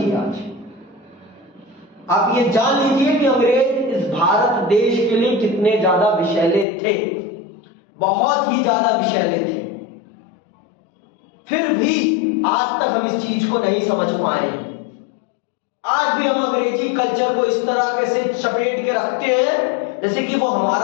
आज आप ये जान लीजिए कि अंग्रेज इस भारत देश के लिए कितने ज्यादा विषैले थे, बहुत ही ज्यादा विषैले थे। फिर भी आज तक हम इस चीज को नहीं समझ पाए हैं। आज भी हम अंग्रेजी कल्चर को इस तरह से चपेट के रखते हैं जैसे कि वो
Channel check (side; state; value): right; drops out; at 6.7 s